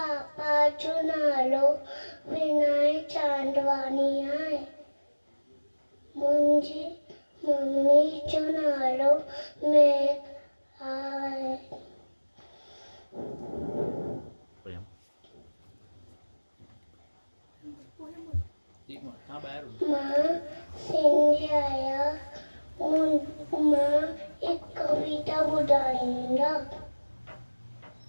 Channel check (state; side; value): inverted; both; correlation -1.00